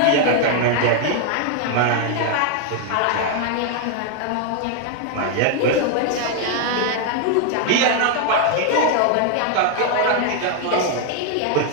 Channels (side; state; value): both; different; correlation 0.00